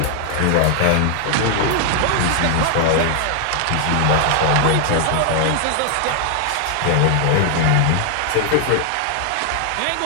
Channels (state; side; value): different; both; correlation 0.00